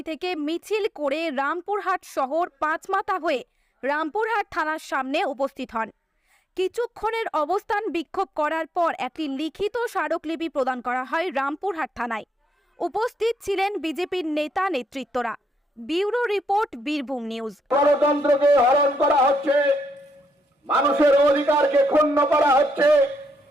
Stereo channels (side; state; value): both; normal; correlation 0.79